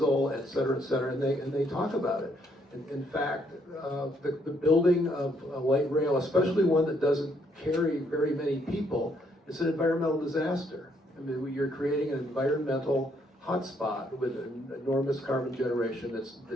et cetera, and they talk about it. In fact, the building of a light rail, especially one that doesn't carry very many people, is an environmental disaster. I mean, you're creating an environmental hotspot with an enormous carbon generation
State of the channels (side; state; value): both; normal; correlation 0.71